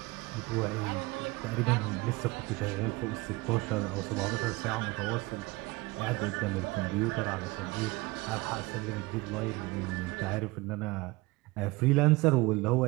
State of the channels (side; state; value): left; quieter; 22.5 dB